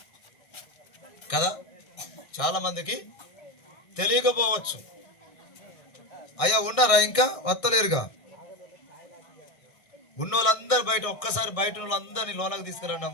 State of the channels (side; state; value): right; late; 1.6 ms